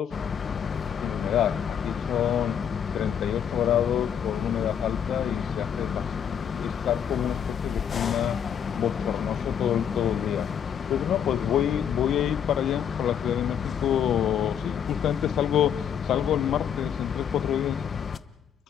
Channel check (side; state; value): right; quieter; 8.5 dB